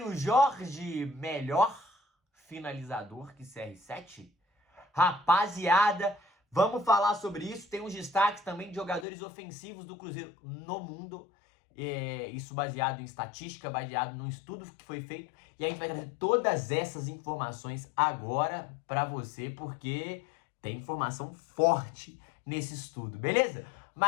Jorge, melhor finalizador que CR7? Rapaziada, vamos falar sobre isso. Tem uns destaques também de jogadores ofensivos do Cruzeiro no mundo. Isso baseado em estatística, baseado num estudo que foi feito. E a gente vai trazer todas essas informações agora pra você, porque tem informação forte nesse estudo, beleza?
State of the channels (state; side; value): drops out; right; at 9.1 s